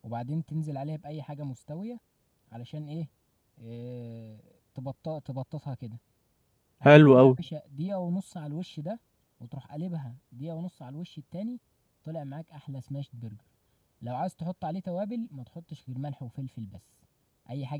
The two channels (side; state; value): both; identical; correlation 1.00